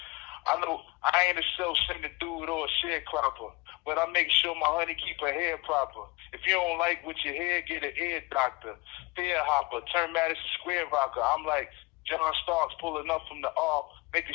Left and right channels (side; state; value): right; quieter; 25.8 dB